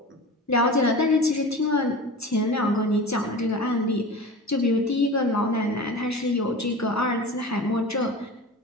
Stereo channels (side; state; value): both; normal; correlation 0.33